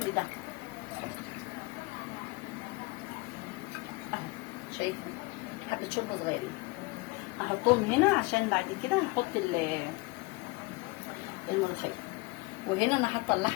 ده اهو. شايفين حبه شوربه صغيرين هحطهم هنا عشان بعد كده هحط الملوخيه. وهنا انا حاطه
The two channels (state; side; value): quieter; right; 25.5 dB